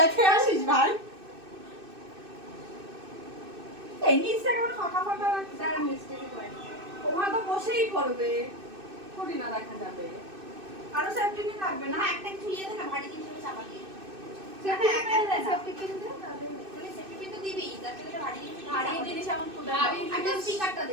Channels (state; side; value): late; left; 2.6 ms